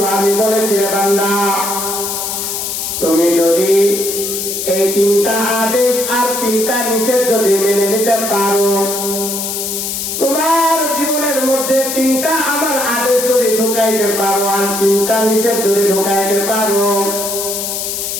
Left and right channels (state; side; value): noise; left; hiss, 3 dB below the sound